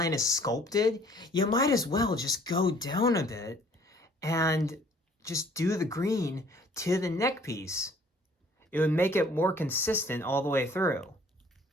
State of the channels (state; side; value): normal; both; correlation 0.56